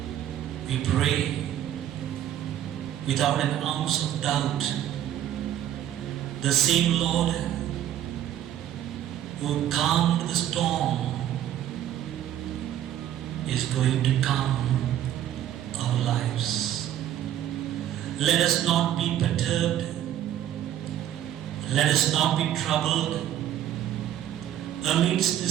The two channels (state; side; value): quieter; left; 11.3 dB